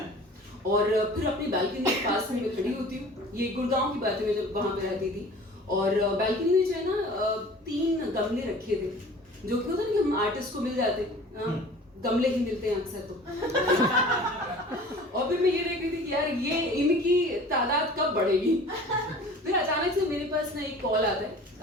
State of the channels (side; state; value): both; normal; correlation 0.44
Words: और फिर अपनी बालकनी के पास में मैं खड़ी होती हूँ, ये गुड़गांव की बात है, मैं जब वहां पे रहती थी, और बालकनी में जो है ना 3 गमले रखे थे, जो कि होता है ना कि हम आर्टिस्ट को मिल जाते हैं, गमले ही मिलते हैं अक्सर तो। और फिर मैं ये देख रही थी कि यार ये इनकी तादाद कब बढ़ेगी। फिर अचानक से मेरे पास ना एक कॉल आता है,